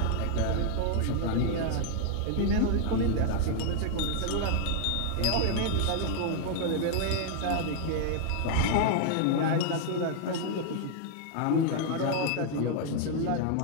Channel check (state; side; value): different; both; correlation 0.00